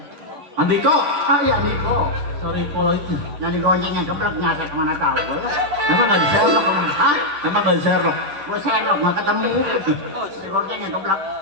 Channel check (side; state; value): left; late; 10 ms